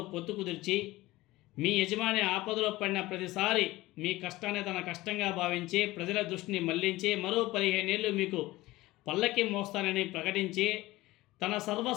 పొత్తు కుదిర్చి మీ యజమాని ఆపదలో పడిన ప్రతిసారి మీ కష్టాన్ని తన కష్టంగా భావించి ప్రజల దృష్టిని మళ్లించి మరో 15 ఏళ్ళు మీకు పల్లకి మోస్తానని ప్రకటించి తన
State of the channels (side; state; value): right; quieter; 18.5 dB